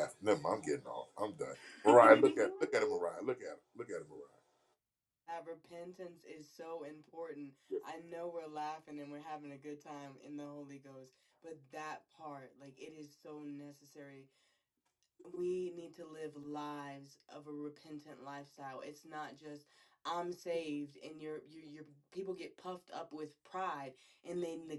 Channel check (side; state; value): both; identical; correlation 1.00